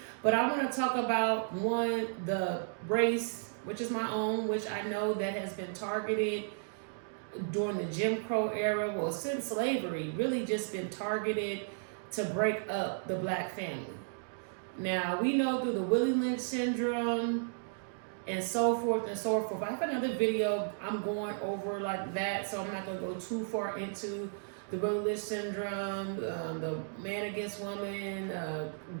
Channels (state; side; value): silent; left; digital silence